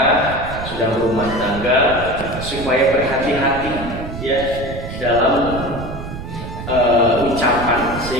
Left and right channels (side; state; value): right; noise; rumble, 9 dB below the sound